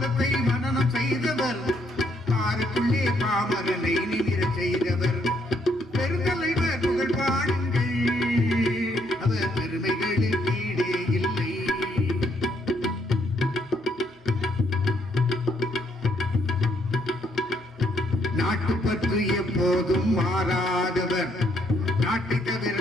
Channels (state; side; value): normal; both; correlation 0.72